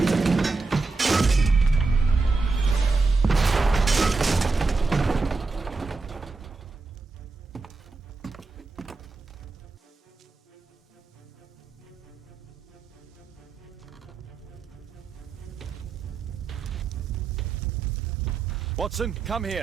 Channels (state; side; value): quieter; left; 4.0 dB